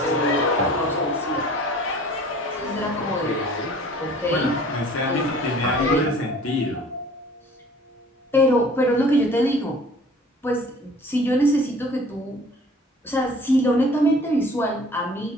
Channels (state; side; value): normal; both; correlation 0.49